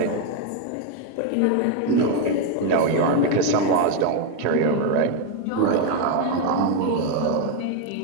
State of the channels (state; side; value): different; both; correlation 0.01